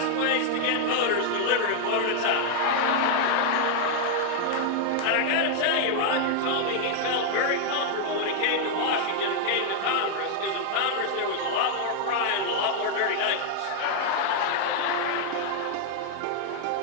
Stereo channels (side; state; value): both; different; correlation 0.00